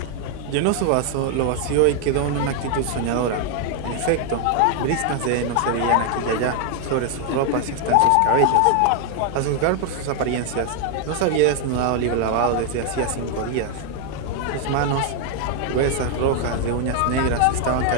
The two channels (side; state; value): both; different; correlation 0.00